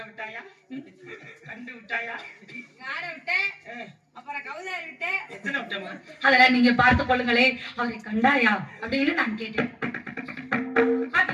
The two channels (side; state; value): both; identical; correlation 1.00